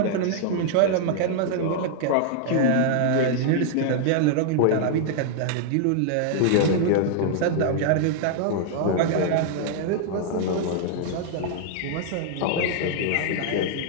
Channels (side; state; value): both; different; correlation 0.00